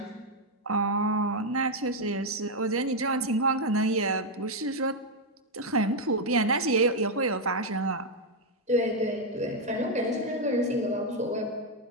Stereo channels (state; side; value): normal; both; correlation 0.01